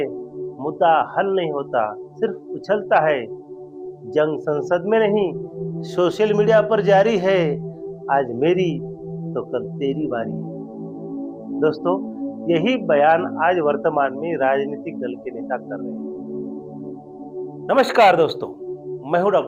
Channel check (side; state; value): both; identical; correlation 1.00